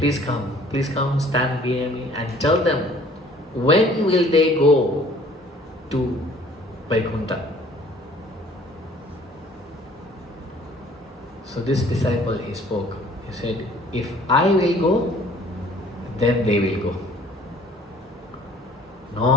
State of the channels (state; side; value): normal; both; correlation 0.55